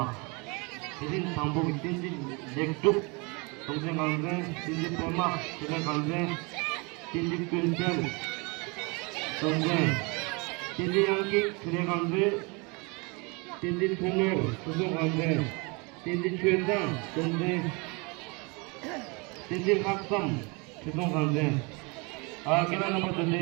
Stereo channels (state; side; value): quieter; left; 29.5 dB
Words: idin tambo tinji lektuk tongse kalde tinji pema tinji kalde tinji pintel tongse tinji yanki tinji kalde tinji tungo tuso kalde tinji chueda tongse tinji haksam tuso kalde kira nomor tadi